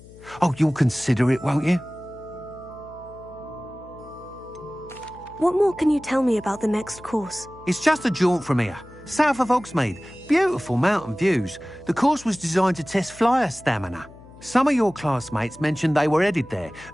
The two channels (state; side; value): noise; left; hum, 21 dB below the sound